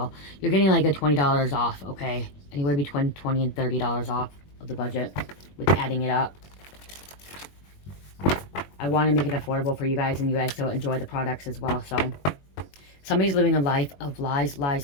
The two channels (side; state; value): right; late; 21 ms